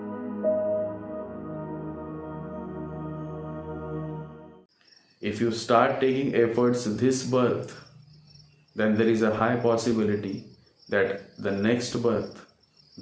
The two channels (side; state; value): both; identical; correlation 1.00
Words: If you start taking efforts this birth, then there is a high possibility that the next birth,